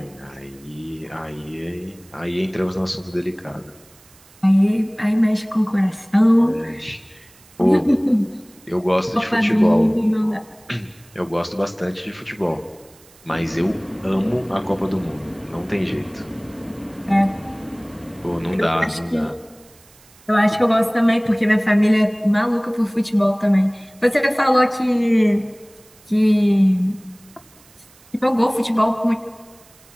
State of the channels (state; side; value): noise; right; hiss, 27 dB below the sound